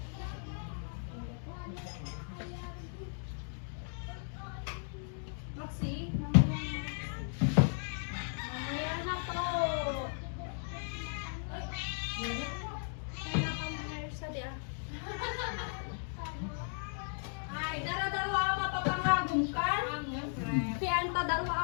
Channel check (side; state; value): right; silent; 54 dB below the other